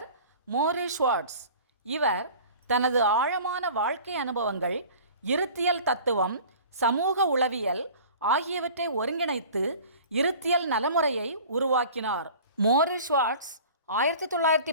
மோரிஸ் ஷுவார்ட்ஸ். இவர் தனது ஆழமான வாழ்க்கை அனுபவங்கள், இருத்தியல் தத்துவம், சமூக உளவியல் ஆகியவற்றை ஒருங்கிணைத்து இருத்தியல் நலமுறையை உருவாக்கினார். மோரிஸ் ஷுவார்ட்ஸ்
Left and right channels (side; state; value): both; inverted; correlation -0.43